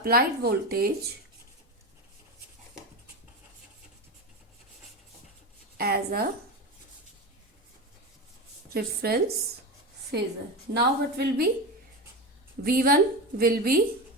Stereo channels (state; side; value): normal; both; correlation 0.20